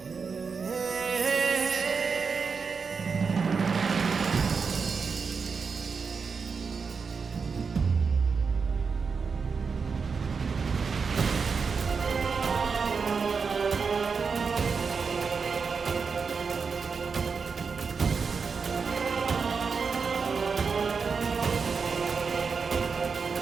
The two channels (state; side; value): quieter; left; 5.3 dB